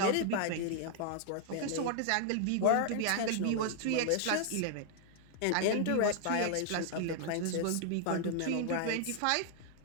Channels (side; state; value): both; different; correlation 0.00